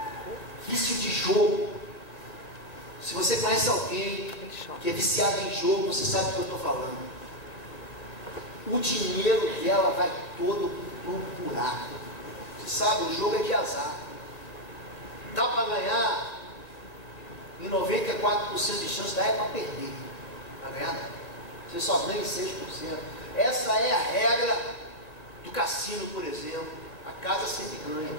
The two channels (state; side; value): late; right; 1.8 ms